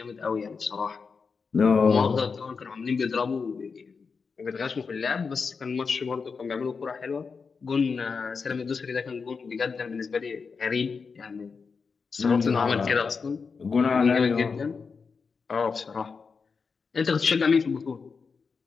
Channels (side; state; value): right; quieter; 5.2 dB